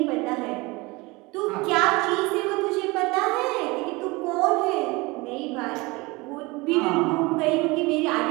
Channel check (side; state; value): left; quieter; 23.9 dB